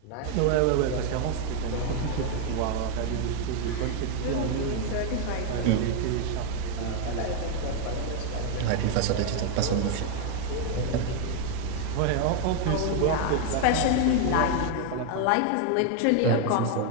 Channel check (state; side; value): different; both; correlation 0.01